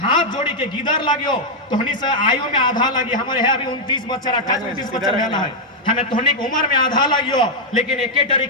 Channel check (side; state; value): both; normal; correlation -0.02